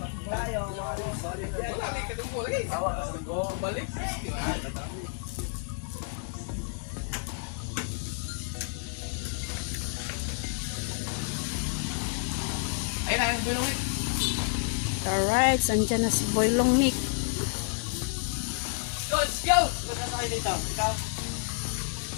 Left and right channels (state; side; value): silent; right; 58 dB below the other